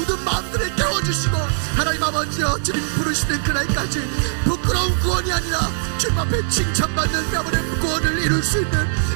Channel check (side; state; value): left; silent; digital silence